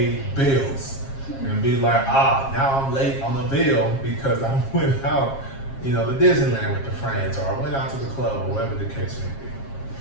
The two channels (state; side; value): late; right; 7.4 ms